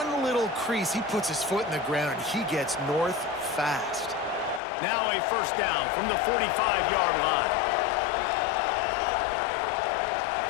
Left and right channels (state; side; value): drops out; right; at 4.6 s